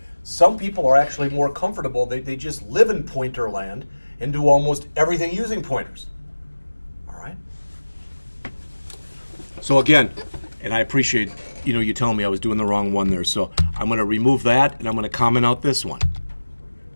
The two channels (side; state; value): both; inverted; correlation -1.00